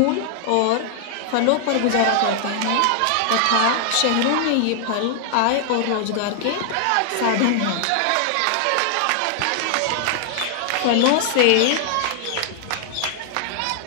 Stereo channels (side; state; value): both; different; correlation 0.00